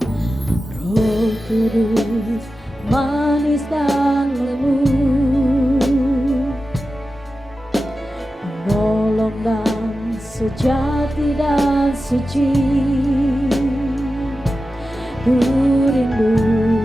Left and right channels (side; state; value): both; normal; correlation 0.93